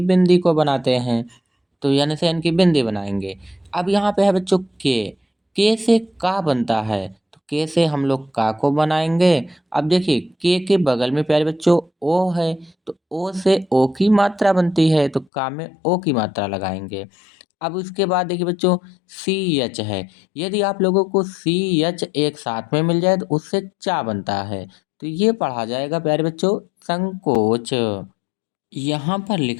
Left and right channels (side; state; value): right; drops out; at 15.2 s